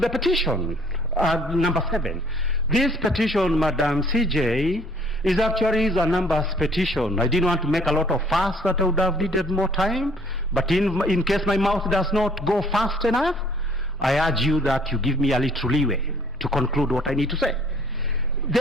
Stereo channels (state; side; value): normal; both; correlation 0.58